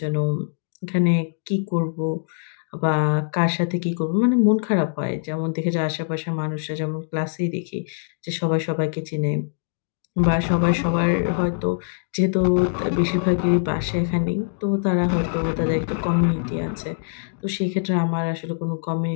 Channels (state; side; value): silent; right; digital silence